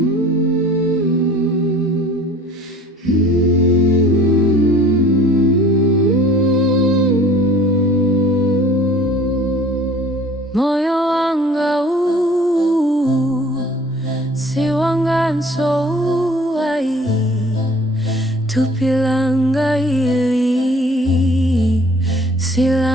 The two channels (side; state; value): both; normal; correlation 0.50